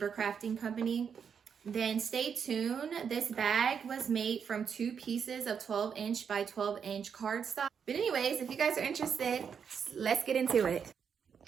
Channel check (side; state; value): left; quieter; 7.0 dB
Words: crafting company, then stay tuned. This bag was made from 2 pieces of 12-inch by 12-inch cardstock. But anyways, if you guys are interested, let's get into it.